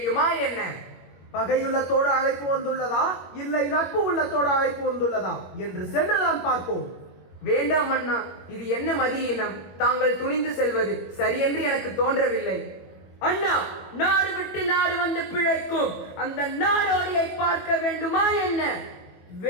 என்ன? பகையுள்ளத்தோடு அழைப்பு வந்துள்ளதா இல்லை நட்பு உள்ளத்தோடு அழைப்பு வந்துள்ளதா என்று சென்றுதான் பார்ப்போம். வேண்டாம் அண்ணா, இது என்ன மதியினம்? தாங்கள் துணிந்து செல்வது சரியென்று எனக்கு தோன்றவில்லை. அண்ணா, நாடு விட்டு நாடு வந்து பிழைக்கும் அந்த நாடோடியை பார்க்க வேண்டுமா என்ன?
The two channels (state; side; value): late; right; 21 ms